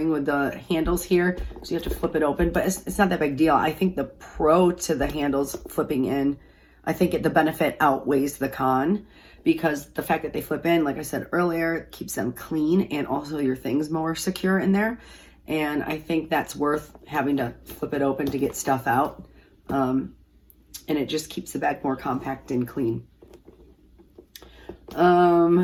with the handles here, so you have to flip it open, but it's not that big deal. I think the pro to the handles flipping in, I think the benefit outweighs the con, because the fact that they flip in, like I said earlier, keeps them clean and also your things more secure in there. And I think that's worth having to flip it open to get stuff out. And it just keeps the bag more compact and clean.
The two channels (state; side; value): identical; both; correlation 1.00